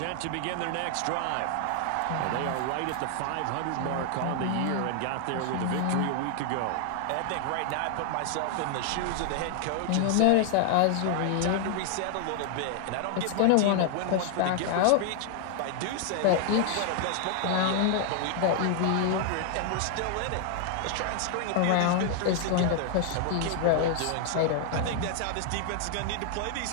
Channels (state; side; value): different; both; correlation 0.00